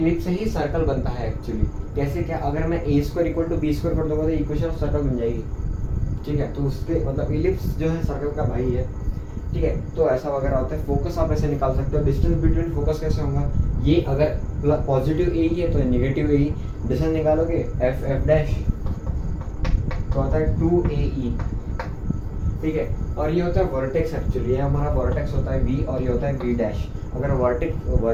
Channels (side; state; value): both; identical; correlation 1.00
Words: से ही सर्कल बनता है एक्चुअली। कैसे क्या? अगर मैं A² = B² कर दूंगा तो इक्वेशन ऑफ सर्कल बन जाएगी। ठीक है, तो उसके मतलब एलिप्स जो है सर्कल का भाई है। ठीक है, तो ऐसा वगैरह होता है। फोकस आप ऐसे निकाल सकते हो। डिस्टेंस बिटवीन फोकस कैसे होगा? ये अगर पॉजिटिव A ही है तो नेगेटिव A ही। डिस्टेंस निकालोगे F डैश तो आता है 2AE। ठीक है, और ये होता है वर्टेक्स। एक्चुअली ये हमारा वर्टेक्स होता है V और ये होता है V डैश। अगर